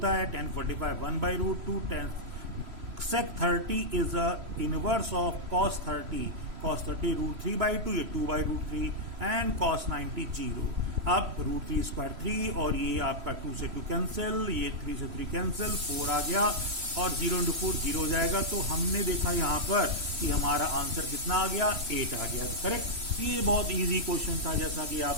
है, tan 45 1/√2, tan sec 30 is a inverse of cos 30, cos 30 √3/2, ये 2/√3 एंड cos 90 0। अब √3 स्क्वायर 3 और ये आपका 2 से 2 कैंसिल, ये 3 से 3 कैंसिल, 4 आ गया और 0 × 4 0 हो जाएगा। तो हमने देखा यहाँ पर कि हमारा आंसर कितना आ गया, 8 आ गया। करेक्ट? ये बहुत इजी क्वेश्चन था, जैसा कि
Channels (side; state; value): left; late; 3.1 ms